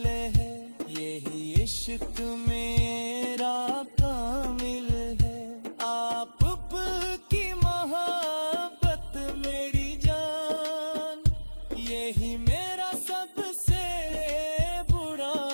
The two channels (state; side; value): inverted; both; correlation -1.00